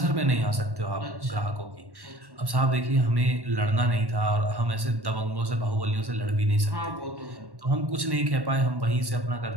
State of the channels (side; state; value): left; late; 1.1 ms